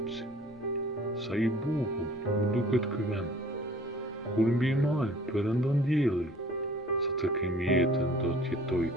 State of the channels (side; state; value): both; normal; correlation 0.51